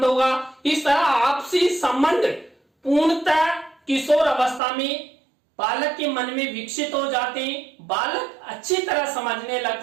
होगा। इस तरह आपसी संबंध पूर्णतः किशोर अवस्था में बालक के मन में विकसित हो जाते हैं, बालक अच्छी तरह समझने लग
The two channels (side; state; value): left; drops out; at 4.6 s